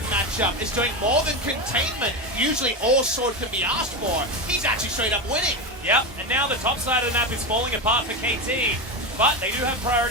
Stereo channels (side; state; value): both; normal; correlation 0.16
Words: matchup is doing more than containment. Usually all Sword can be asked for. He's actually straight up winning. Yep, and now the top side of the map is falling apart for KT. But they do have